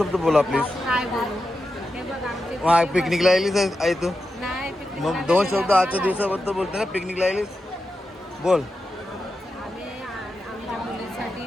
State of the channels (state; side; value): normal; both; correlation 0.89